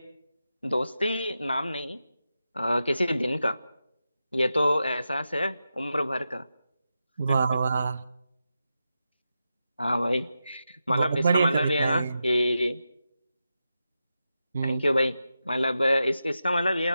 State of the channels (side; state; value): both; inverted; correlation -0.89